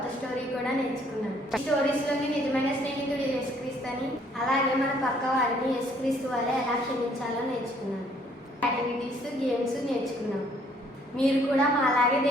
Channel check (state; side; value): normal; both; correlation 0.63